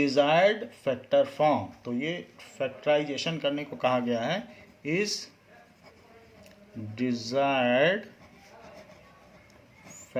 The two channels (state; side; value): identical; both; correlation 1.00